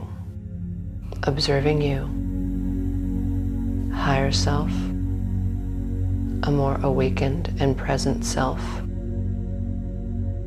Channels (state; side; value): identical; both; correlation 1.00